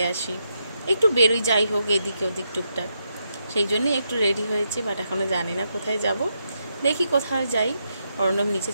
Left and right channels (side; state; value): both; inverted; correlation -0.81